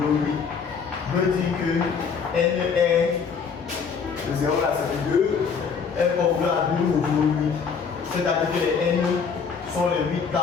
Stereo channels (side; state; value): right; quieter; 5.9 dB